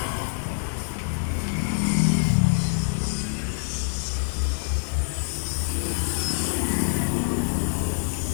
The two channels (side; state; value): right; silent; digital silence